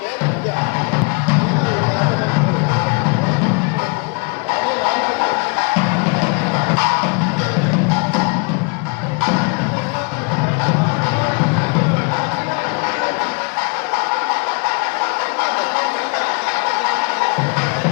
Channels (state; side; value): quieter; right; 33.6 dB